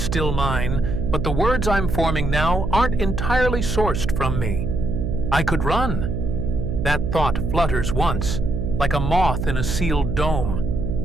still mine, but the words I'm forming now aren't entirely sourced from me. I could run. That thought flutters once, like a moth in a sealed dome.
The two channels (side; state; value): right; noise; hum, 2 dB below the sound